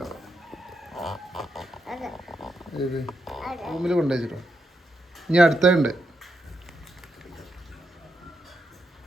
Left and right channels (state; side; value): normal; both; correlation 0.83